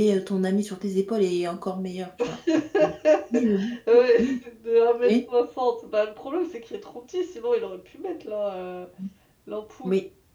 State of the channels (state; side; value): identical; both; correlation 1.00